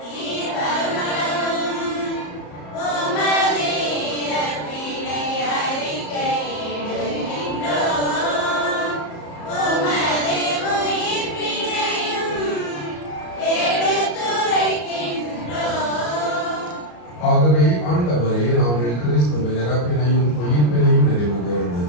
ஆகவே ஆண்டவரே, நாங்கள் கிறிஸ்துவின் இறப்பினையும் உயிர்ப்பினையும் நினைவு கூர்ந்து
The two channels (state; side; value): late; right; 34 ms